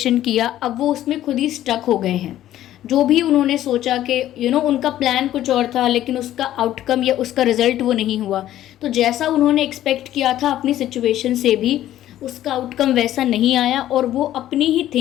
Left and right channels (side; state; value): right; quieter; 12.9 dB